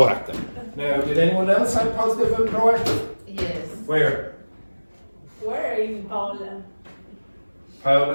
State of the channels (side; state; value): both; inverted; correlation -1.00